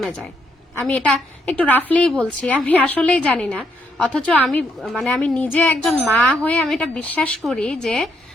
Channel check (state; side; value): normal; both; correlation 0.75